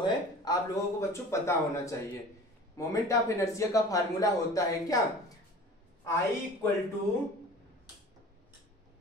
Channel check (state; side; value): normal; both; correlation 0.42